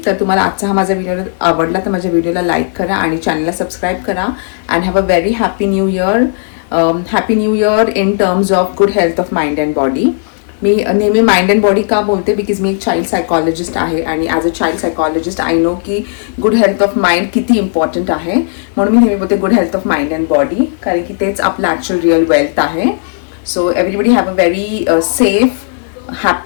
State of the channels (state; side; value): silent; right; digital silence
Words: तर तुम्हाला आजचा हा माझा व्हिडिओ आवडला तर माझ्या व्हिडिओला लाईक करा आणि चॅनलला सबस्क्राईब करा. And have a very happy new year. Happy new year in terms of good health of mind and body. मी नेहमी माइंड अँड बॉडी का बोलते, बिकॉज मी एक चाइल्ड सायकॉलॉजिस्ट आहे आणि as a child psychologist I know की good health of mind किती important आहे. म्हणून मी नेहमी बोलते good health of mind and body, कारण की तेच आपलं ॲक्च्युअल रिअल वेल्थ आहे. So everybody have a very safe,